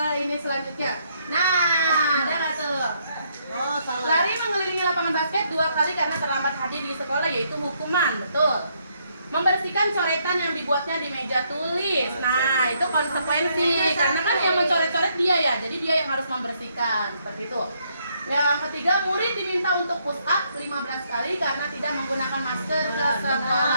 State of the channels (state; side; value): inverted; both; correlation -0.72